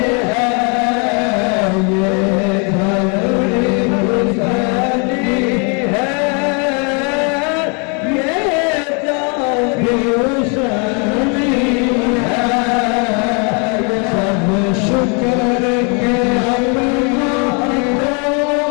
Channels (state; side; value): quieter; right; 35.6 dB